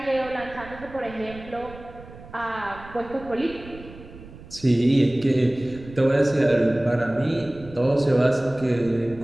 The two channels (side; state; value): right; noise; rumble, 18 dB below the sound